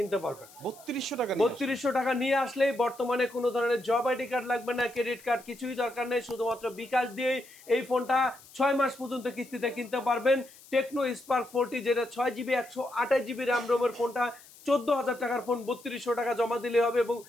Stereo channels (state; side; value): noise; left; hiss, 22 dB below the sound